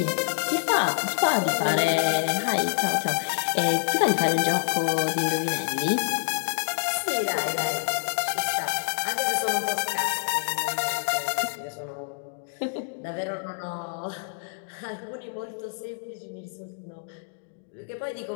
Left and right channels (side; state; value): right; silent; digital silence